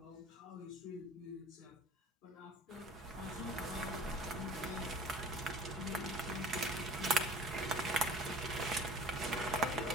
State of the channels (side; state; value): both; normal; correlation 0.46